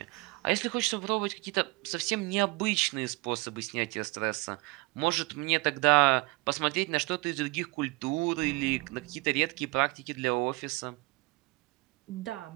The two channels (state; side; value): quieter; left; 25.4 dB